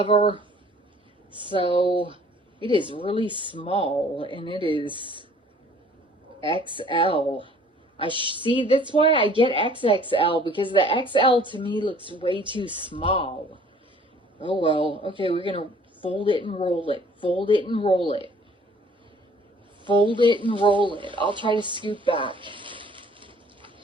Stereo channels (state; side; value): normal; both; correlation 0.55